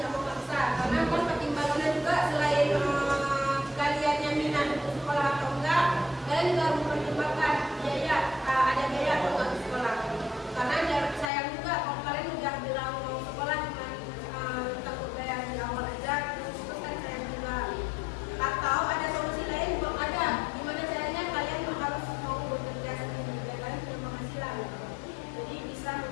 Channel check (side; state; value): right; drops out; at 11.3 s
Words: memaksa. Karena kan pertimbangannya juga selain kaliannya minat untuk sekolah atau enggak, kalian juga harus mempertimbangkan biaya, ada biaya atau enggak untuk sekolah. Karena sayang juga kalau kalian udah bilang mau sekolah cuma takut bayar di awal aja, terus itu kan sayang juga. Atau ada solusi lain, belum ada. Gimana caranya kalian harus mau bekerja sendiri, biar kalian punya penghasilan. Jadi bisa